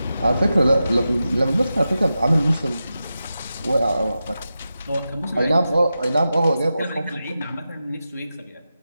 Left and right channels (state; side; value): inverted; both; correlation -0.91